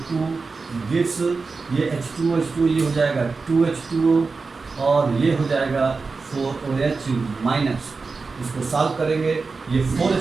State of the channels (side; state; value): left; quieter; 4.3 dB